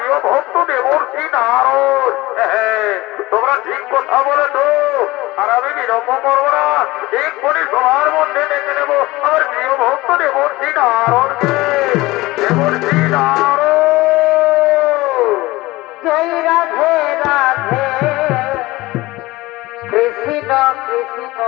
ভক্ত দেবর্ষী নারদ। হ্যাঁ, তোমরা ঠিক কথা বলেছ, আর আমি বিলম্ব করবো না, এক্ষুনি সবার মধ্যে দেখে নেব আমার প্রিয় ভক্ত দেবর্ষী নারদকে। দেবর্ষী নারদ, জয় রাধে রাধে, কৃষ্ণ কৃষ্ণ,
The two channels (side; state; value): right; quieter; 19.8 dB